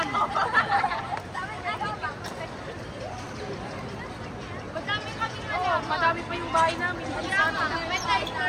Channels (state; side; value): identical; both; correlation 1.00